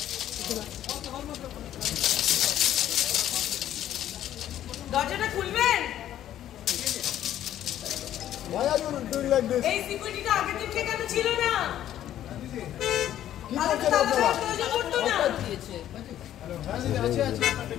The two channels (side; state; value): right; quieter; 11.8 dB